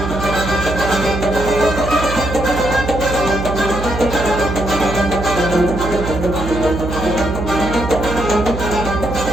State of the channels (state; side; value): noise; right; hum, 6 dB below the sound